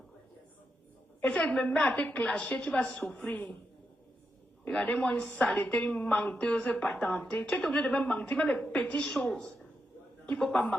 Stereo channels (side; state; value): both; normal; correlation 0.85